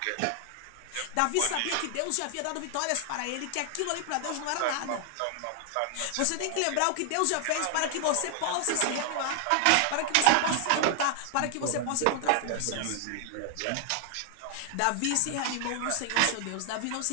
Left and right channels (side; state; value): both; different; correlation 0.00